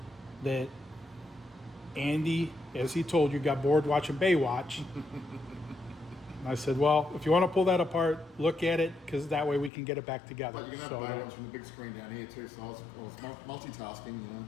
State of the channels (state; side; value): drops out; right; at 9.7 s